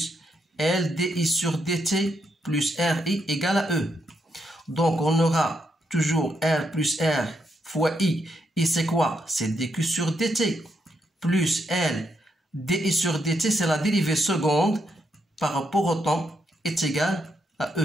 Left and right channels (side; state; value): both; normal; correlation 0.79